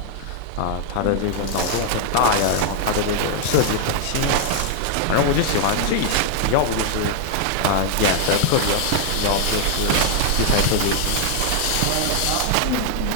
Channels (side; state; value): both; different; correlation 0.00